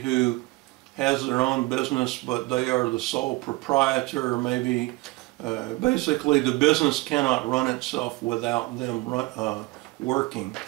has their own business, but they are the sole proprietor, or maybe basically the business cannot run itself without them working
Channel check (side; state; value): left; quieter; 21.9 dB